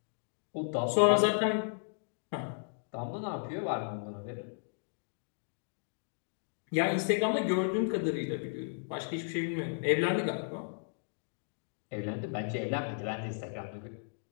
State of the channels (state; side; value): silent; right; digital silence